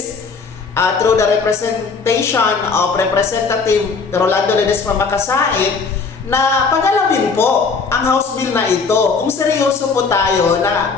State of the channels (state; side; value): quieter; right; 4.9 dB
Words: through the representation of Representative Rolando Ledesma Makasait na pagalawin po ang House Bill na ito. Kung seryoso po tayo na